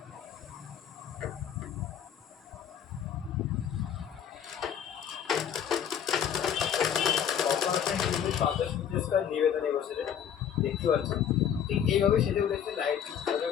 নিবেদনে বসে দেখতে পাচ্ছি ঠিক এইভাবে সেজে উঠেছে লাইট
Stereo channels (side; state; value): right; quieter; 8.8 dB